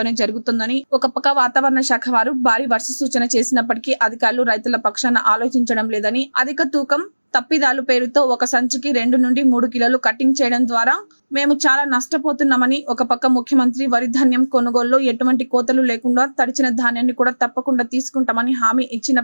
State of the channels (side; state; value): both; inverted; correlation -1.00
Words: జరుగుతుందని, ఒక పక్క వాతావరణ శాఖ వారు భారీ వర్ష సూచన చేసినప్పటికీ అధికారులు రైతుల పక్షాన ఆలోచించడం లేదని, అధిక తూకం తప్పిదాలు పేరుతో ఒక సంచికి 2 నుండి 3 కిలోలు కటింగ్ చేయడం ద్వారా మేము చాలా నష్టపోతున్నామని, ఒక పక్క ముఖ్యమంత్రి వరి ధాన్యం కొనుగోలులో ఎటువంటి కోతలు లేకుండా తడిచిన ధాన్యాన్ని కూడా తప్పకుండా తీసుకుంటామని హామీ